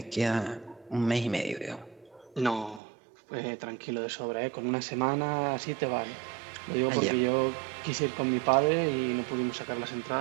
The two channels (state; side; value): drops out; left; at 2.8 s